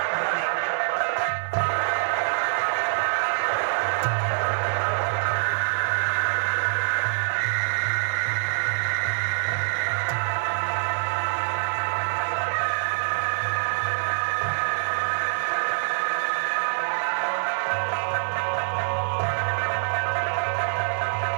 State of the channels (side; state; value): left; silent; digital silence